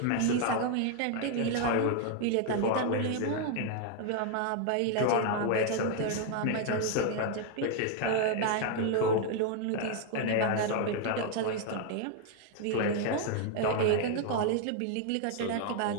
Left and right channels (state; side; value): different; both; correlation 0.01